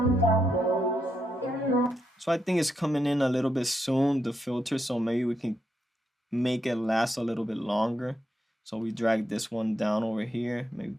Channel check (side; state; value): both; normal; correlation 0.81